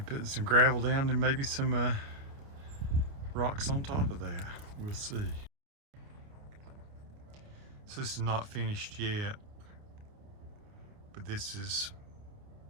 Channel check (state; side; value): late; left; 29 ms